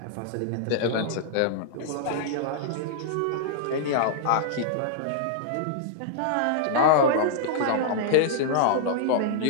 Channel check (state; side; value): different; both; correlation -0.02